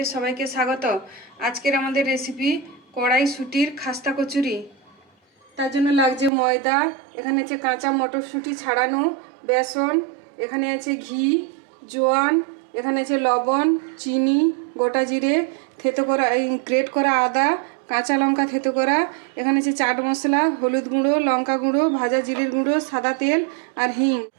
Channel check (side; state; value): left; drops out; at 6.3 s